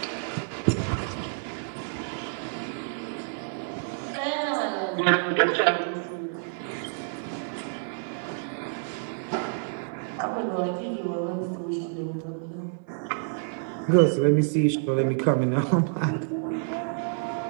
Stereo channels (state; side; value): silent; left; digital silence